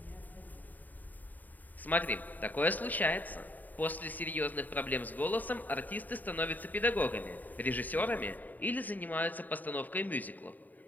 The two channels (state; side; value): late; right; 0.084 ms